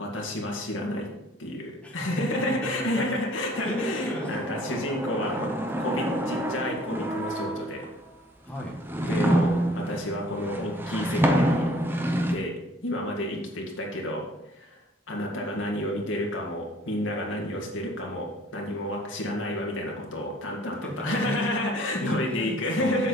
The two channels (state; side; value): normal; both; correlation 0.54